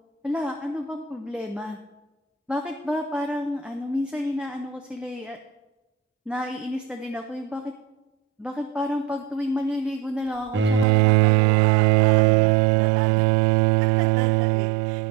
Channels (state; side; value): drops out; left; at 10.9 s